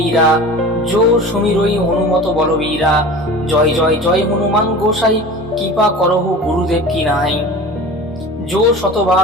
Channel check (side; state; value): both; normal; correlation 0.37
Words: যো সুমিরই হনুমত বলবীরা, জয় জয় জয় হনুমান গোসাই, কৃপা করহু গুরুদেব কি নাই, যো